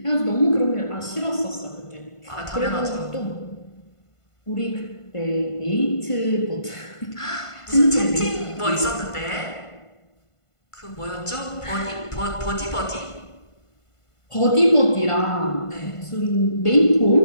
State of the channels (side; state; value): right; late; 1.5 ms